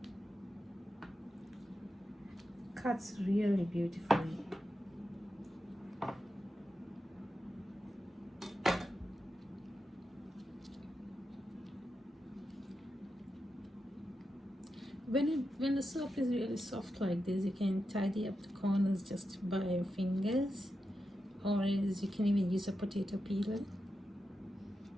Cuts really beautifully. When the soap is really soft like this, you can tidy up the corners just by your fingers, or else you can even use a potato peeler.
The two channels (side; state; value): both; normal; correlation 0.88